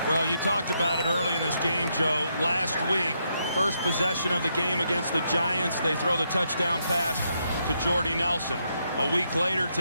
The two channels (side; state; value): both; inverted; correlation -0.78